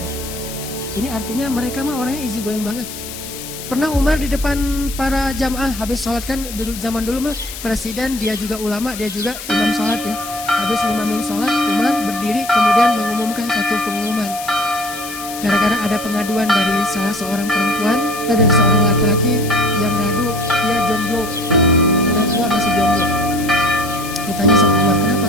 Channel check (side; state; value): left; noise; hiss, 11 dB below the sound